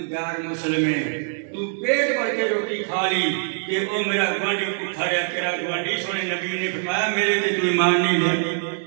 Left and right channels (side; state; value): left; silent; 63 dB below the other